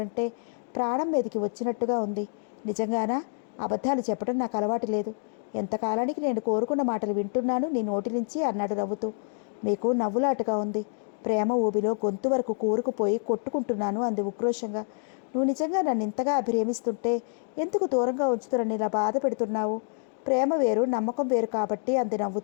ప్రాణం మీదకి వచ్చినట్టుగా ఉంది. నిజంగానా? అబద్ధాలు చెప్పడం నాకు అలవాటు లేదు. ఎంతకాలానికి నేను కోరుకున్న మాటలు వింటున్నాను నీ నోటి నుంచి అన్నాడు నవ్వుతూ. మీకు నవ్వులాటగా ఉంది. ప్రేమ ఊబిలో గొంతు వరకు కూరుకుపోయి కొట్టుకుంటున్నాను అంది ఉక్రోషంగా. నువ్వు నిజంగా నన్ను ఇంతగా అభిరేమిస్తుంటే ఎందుకు దూరంగా ఉంచుతున్న ఇలా బాధ పెడుతున్నావు? ప్రేమ వేరు నమ్మకం వేరు కాబట్టి అంది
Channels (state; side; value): silent; right; 56 dB below the other